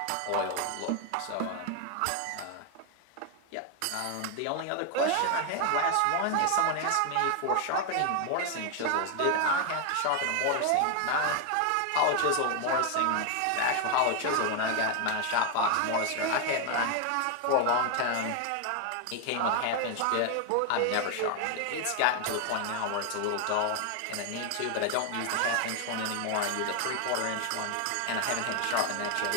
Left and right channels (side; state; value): both; different; correlation 0.01